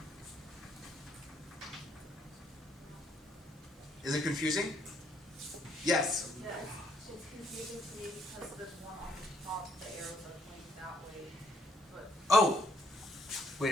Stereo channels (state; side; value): normal; both; correlation 0.69